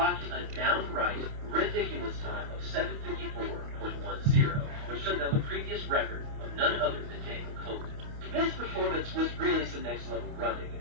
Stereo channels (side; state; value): left; late; 28 ms